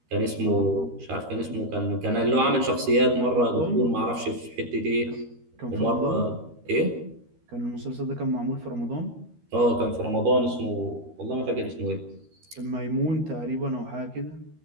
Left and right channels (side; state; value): left; late; 13 ms